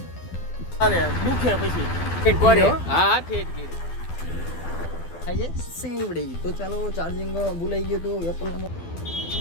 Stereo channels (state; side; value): late; right; 12 ms